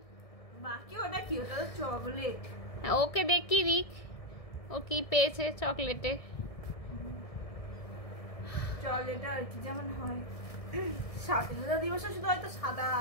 বাকি ওটা কি? ওটা তো চকলেট। ওকে দেখি দিক ও কি পেয়েছে চকলেটে। চকলেট আর কি যেমন হয় স্বাধীনতা দিবসে শুধু হয়তো সাদা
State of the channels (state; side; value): late; right; 1.6 ms